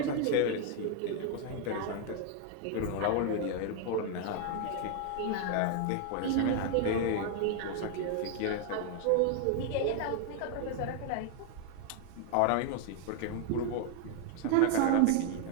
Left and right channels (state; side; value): different; both; correlation 0.00